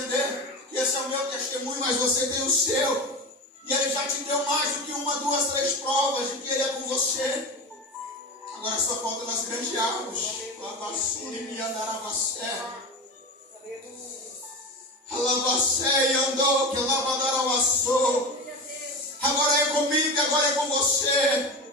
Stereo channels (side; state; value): both; normal; correlation 0.25